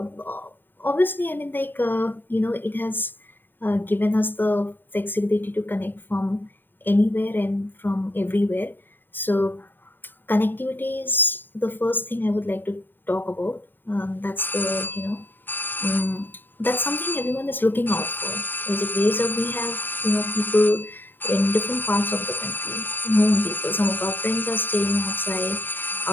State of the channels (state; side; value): late; right; 0.093 ms